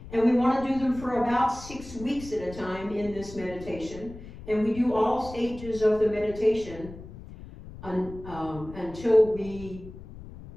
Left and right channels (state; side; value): noise; left; rumble, 15 dB below the sound